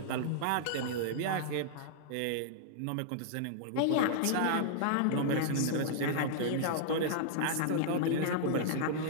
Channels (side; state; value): both; different; correlation -0.01